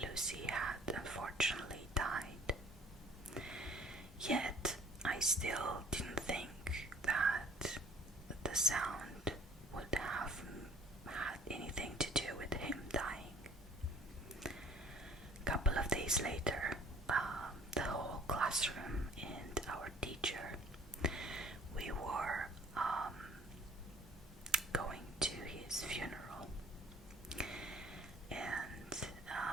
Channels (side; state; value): both; normal; correlation 0.52